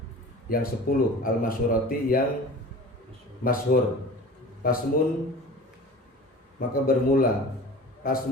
yang 10, al-masyurati, yang masyhur. Pasmun, maka bermula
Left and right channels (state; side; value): normal; both; correlation 0.39